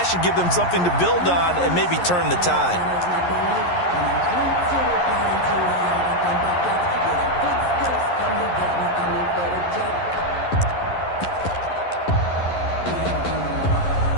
should give them something to build on and maybe turn the tide.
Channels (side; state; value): right; late; 11 ms